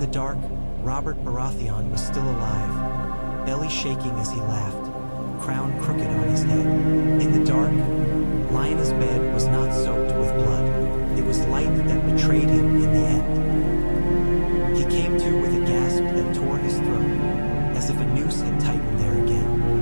dark, Robert Baratheon was still alive, belly shaking as he laughed, crown crooked on his head. In the dark, Lyanna's bed was not soaked with blood. It was light that betrayed him in the end. He came to with a gasp that tore his throat, as if a noose had tightened there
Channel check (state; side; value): inverted; both; correlation -1.00